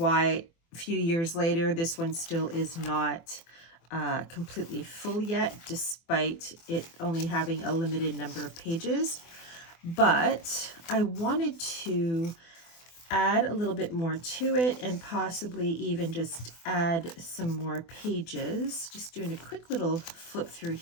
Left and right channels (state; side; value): late; right; 24 ms